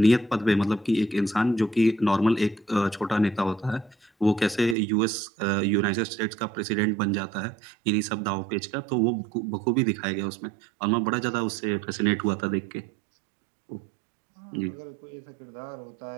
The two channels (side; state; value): left; drops out; at 4.8 s